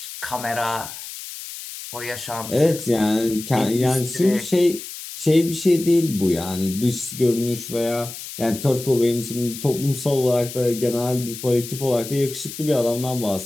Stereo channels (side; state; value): left; noise; hiss, 11 dB below the sound